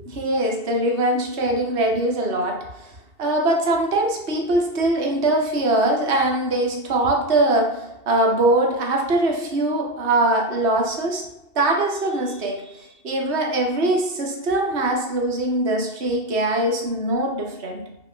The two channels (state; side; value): late; left; 2.7 ms